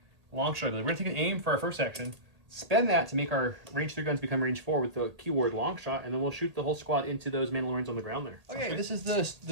long shot. We're going to take an aim for our first action. Spend that to make our range 3 guns become range 4 with the keyword long shot, and then we'll shoot the whole squad into those Mandalorians on the ground there. Okay, this is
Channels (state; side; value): late; left; 1.8 ms